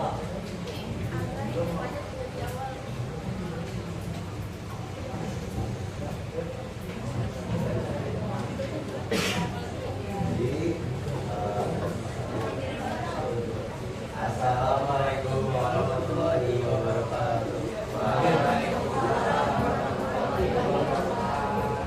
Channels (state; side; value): identical; both; correlation 1.00